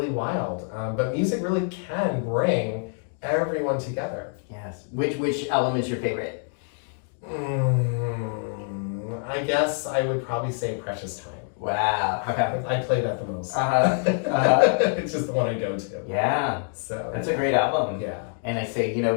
wild. But music really can bring everyone together. Yes. Which album is your favorite? I guess I would probably say Precious Time. Wow. Okay. I play that the most. It's just the one I go to. Yeah. So that's a great album. Yeah. And I say, you know,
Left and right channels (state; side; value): silent; right; 57 dB below the other